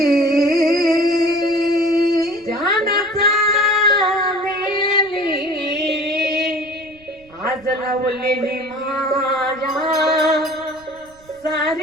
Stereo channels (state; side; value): noise; right; rumble, 27 dB below the sound